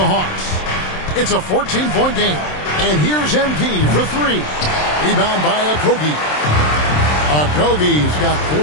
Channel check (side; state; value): right; late; 27 ms